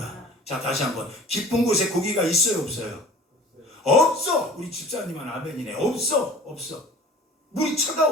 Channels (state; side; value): normal; both; correlation 0.45